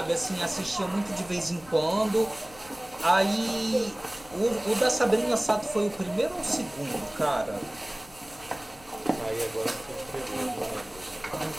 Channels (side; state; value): left; noise; rumble, 23 dB below the sound